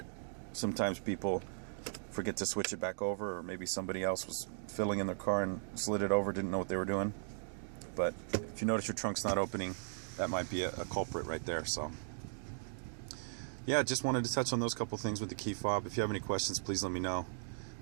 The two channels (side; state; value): left; silent; digital silence